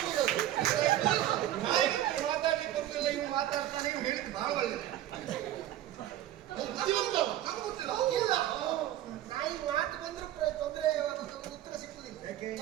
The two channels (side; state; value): left; quieter; 13.0 dB